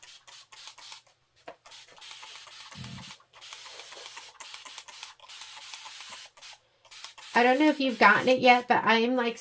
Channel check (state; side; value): identical; both; correlation 1.00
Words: I don't know if you've gotten it yet, but I am like